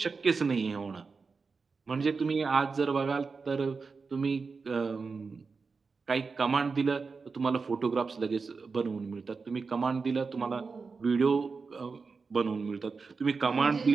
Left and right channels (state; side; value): quieter; left; 4.7 dB